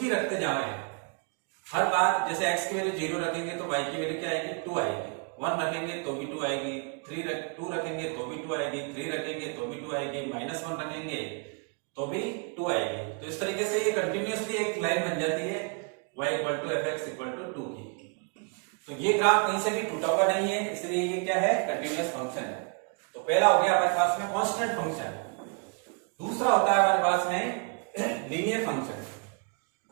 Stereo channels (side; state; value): left; quieter; 37.9 dB